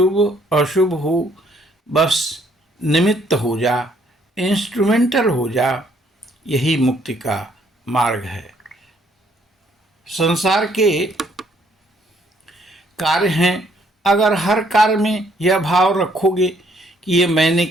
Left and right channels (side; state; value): both; normal; correlation 0.66